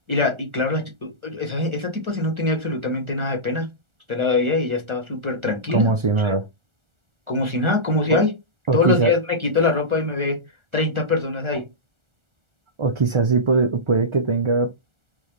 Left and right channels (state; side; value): late; left; 1.4 ms